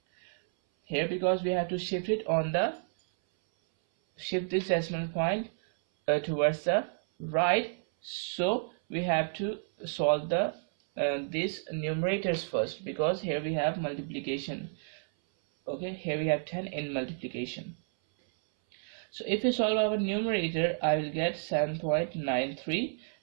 here, because we have to shift it on the this decimal point towards the right, so we have to solve the these numerators first, because here we have multiplication. Okay, here we have 10 in multiplication. So if we solve our numerator, I will get 7.93,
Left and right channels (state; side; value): silent; left; 57 dB below the other